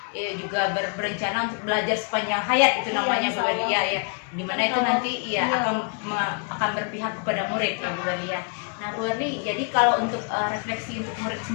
juga berencana untuk belajar sepanjang hayat, itu namanya Bu Waria ya. Dimana itu nanti akan berpihak kepada murid ya Bu Waria. Nah Bu Waria, jadi kalau untuk refleksi untuk murid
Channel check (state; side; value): quieter; right; 38.5 dB